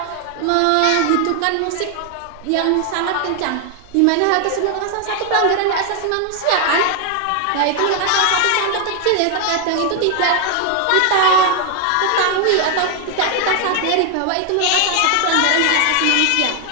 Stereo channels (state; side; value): different; both; correlation 0.00